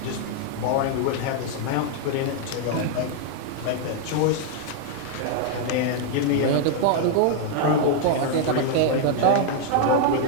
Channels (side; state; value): both; different; correlation 0.00